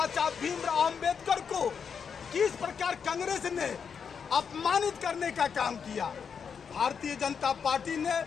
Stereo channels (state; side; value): quieter; right; 6.6 dB